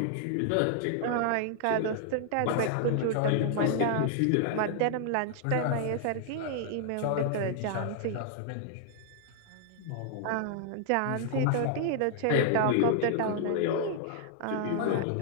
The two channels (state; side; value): different; both; correlation 0.00